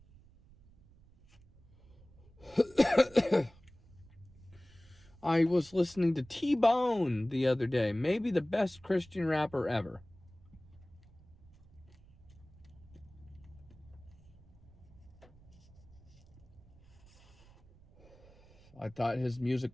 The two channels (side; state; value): right; noise; rumble, 24 dB below the sound